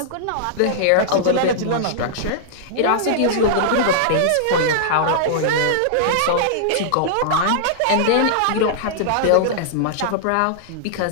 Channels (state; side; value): different; both; correlation -0.01